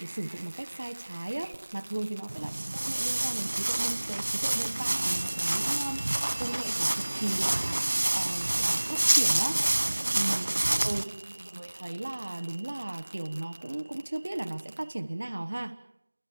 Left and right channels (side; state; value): both; inverted; correlation -1.00